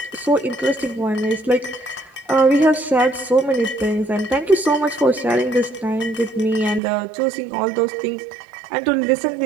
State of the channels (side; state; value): left; drops out; at 6.8 s